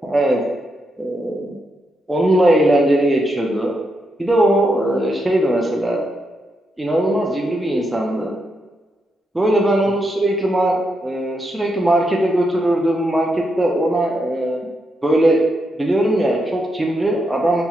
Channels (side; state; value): both; normal; correlation 0.82